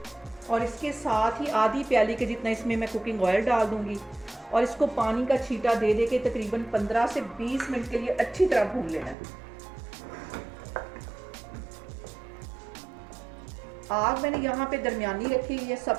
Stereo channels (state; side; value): drops out; left; at 9.2 s